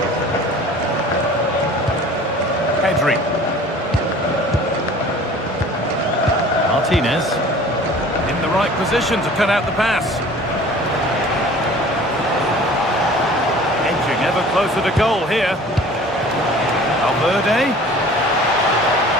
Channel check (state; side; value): normal; both; correlation 0.46